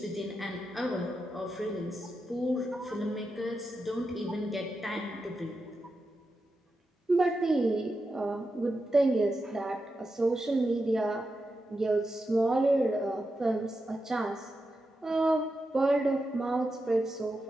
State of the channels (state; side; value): normal; both; correlation 0.88